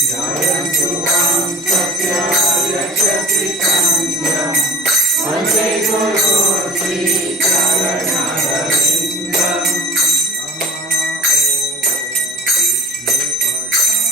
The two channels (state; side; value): normal; both; correlation 0.40